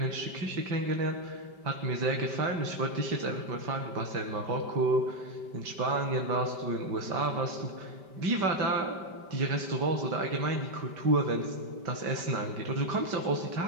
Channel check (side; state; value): left; late; 5.1 ms